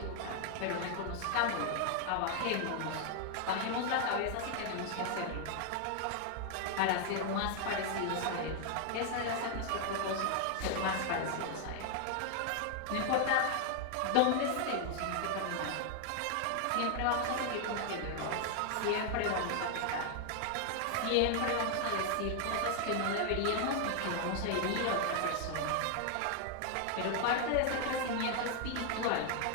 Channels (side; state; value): both; different; correlation 0.00